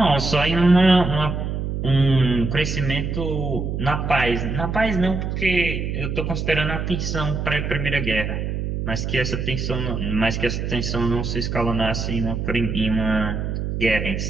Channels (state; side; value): noise; right; hum, 3 dB below the sound